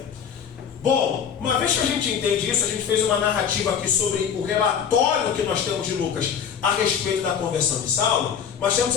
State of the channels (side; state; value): right; quieter; 7.7 dB